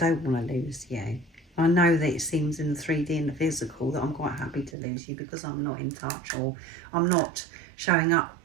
want to lose you. I know that it seems in the 3D and the physical that I'm quite happy to lose you because I'm not in touch, or I'm not showing up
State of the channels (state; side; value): drops out; left; at 4.8 s